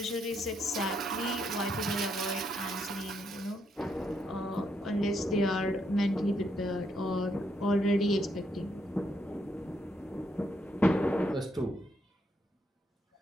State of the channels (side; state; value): both; normal; correlation 0.76